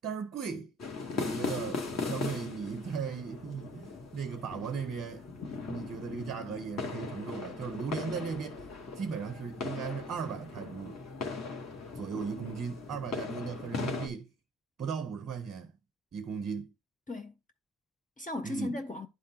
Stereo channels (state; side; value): normal; both; correlation 0.55